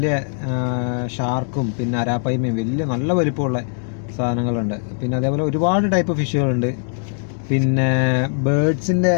ഷാർക്കും പിന്നെ അരാപ്പൈമയും വലിയ നല്ല വലിപ്പമുള്ള സാധനങ്ങളുണ്ട്. പിന്നെ അതേപോലെ ഒരുപാട് ടൈപ്പ് ഫിഷുകളുണ്ട്. പിന്നെ ബേർഡ്സിൻ്റെ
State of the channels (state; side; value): silent; right; 55 dB below the other